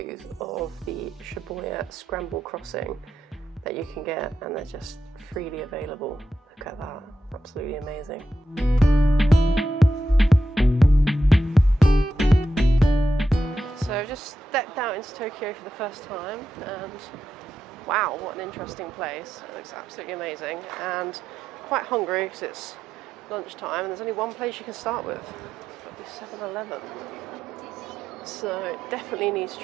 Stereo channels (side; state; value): both; normal; correlation 0.87